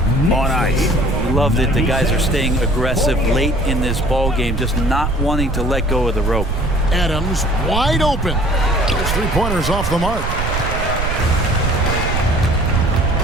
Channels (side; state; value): right; noise; rumble, 2 dB below the sound